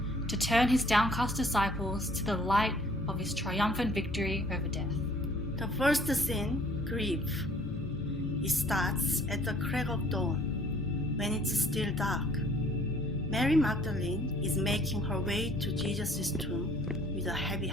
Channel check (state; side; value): normal; both; correlation 0.57